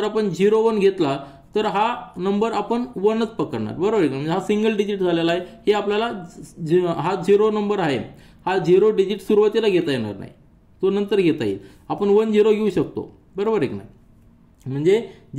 आपण 0 1 घेतला तर हा नंबर आपण 1च पकडणार. बरोबर आहे. म्हणजे हा सिंगल डिजिट झालेला आहे. हे आपल्याला हा 0 नंबर आहे हा 0 डिजिट सुरुवातीला घेता येणार नाही, तो नंतर घेता येईल. आपण 1 0 घेऊ शकतो. बरोबर आहे की नाही. म्हणजे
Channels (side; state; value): both; identical; correlation 1.00